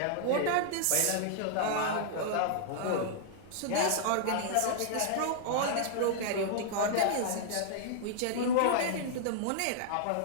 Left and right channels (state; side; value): different; both; correlation -0.01